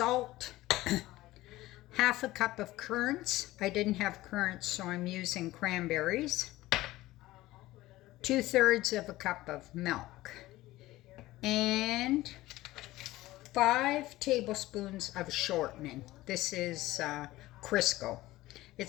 half a cup of currants. I didn't have currants, so I'm using cranberries, 2/3 of a cup of milk, and 5 tablespoons of shortening. This is Crisco.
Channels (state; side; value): quieter; right; 17.3 dB